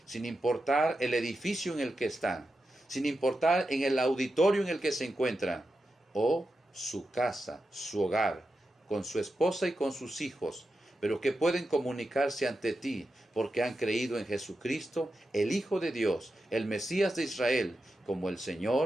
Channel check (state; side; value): normal; both; correlation 0.89